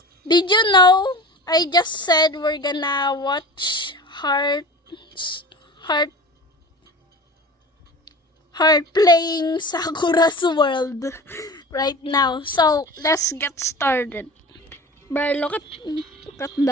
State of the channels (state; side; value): normal; both; correlation 0.36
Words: did you know I just said we're gonna watch Heart playing Sakura's World right now. So let's get started. But look at